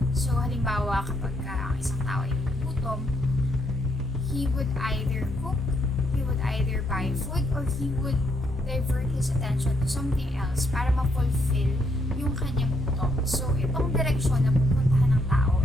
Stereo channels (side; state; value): both; normal; correlation 0.74